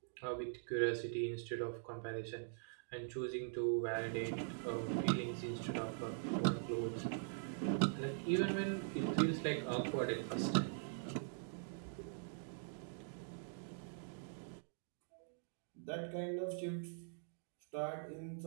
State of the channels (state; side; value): silent; left; digital silence